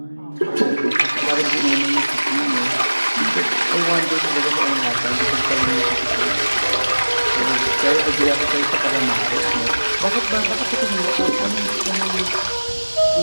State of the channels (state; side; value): inverted; both; correlation -1.00